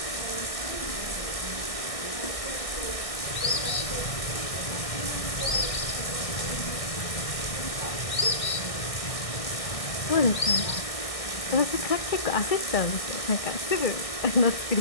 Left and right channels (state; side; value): late; right; 1.6 ms